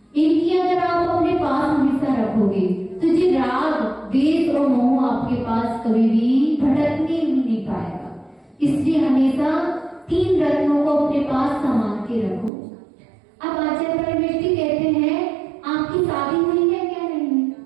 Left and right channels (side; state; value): left; drops out; at 12.5 s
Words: इनकी अगर आप अपने पास हमेशा रखोगे तो जी राग, द्वेष और मोह आपके पास कभी भी भटकने ही नहीं पाएगा। इसलिए हमेशा 3 रत्नों को अपने पास संभाल के रखो। अब आचार्य परमेष्ठी कहते हैं आपकी शादी हुई है क्या नहीं हुई?